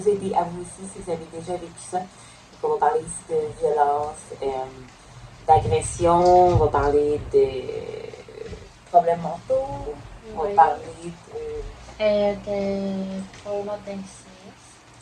aider à vous aussi si vous avez déjà vécu ça. Donc, on va parler ici de violence, d'agression, on va parler de problèmes mentaux, on va parler de probablement d'inceste.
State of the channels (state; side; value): identical; both; correlation 1.00